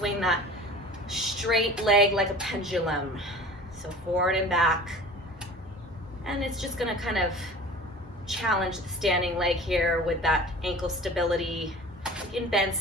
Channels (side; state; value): both; normal; correlation 0.41